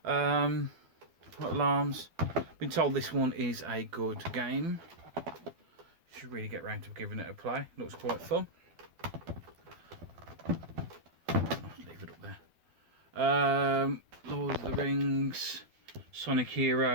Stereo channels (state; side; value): late; left; 12 ms